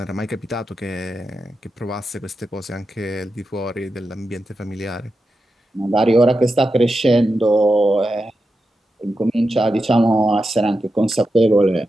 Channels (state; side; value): normal; both; correlation 0.89